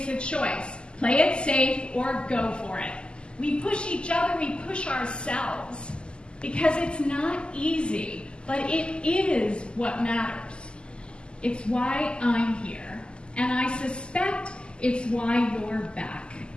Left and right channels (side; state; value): right; late; 0.050 ms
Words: a choice. Play it safe or go for it. We push each other, we push ourselves, because it's not easy, but it is what matters. It's why I'm here, and I suspect it's why you're back,